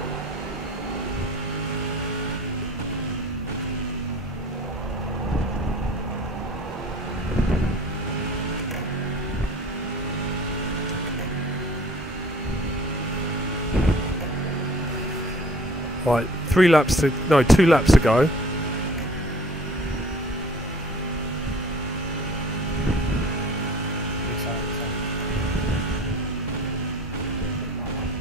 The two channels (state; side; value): normal; both; correlation 0.48